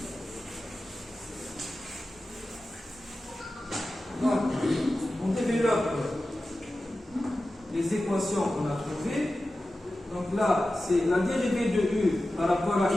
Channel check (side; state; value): both; normal; correlation 0.94